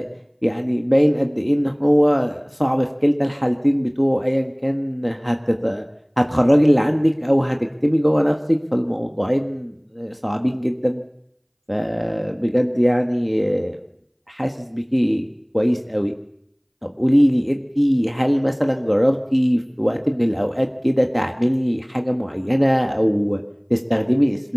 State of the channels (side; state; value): both; identical; correlation 1.00